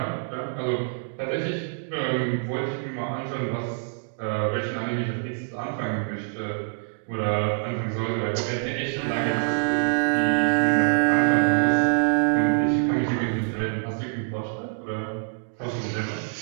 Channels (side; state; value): left; silent; digital silence